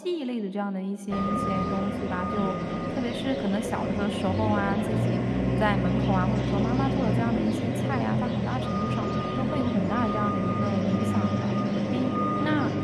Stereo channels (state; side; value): identical; both; correlation 1.00